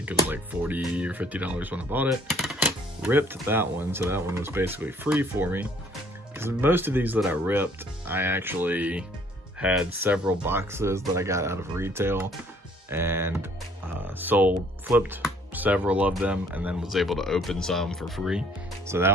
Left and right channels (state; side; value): normal; both; correlation 0.60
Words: it was like $40 or $50 when I bought it. Ripped that one, so that one was basically free for me. Because most of these that I ripped, I actually had several boxes that I got out of retail and flipped several of them, and then was able to open some for free. So